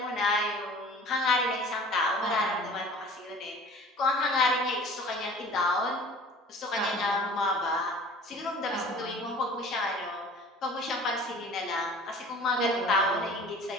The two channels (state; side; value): normal; both; correlation 0.45